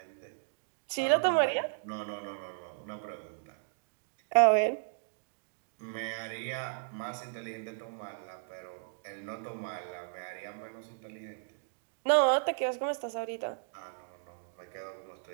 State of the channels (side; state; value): left; silent; digital silence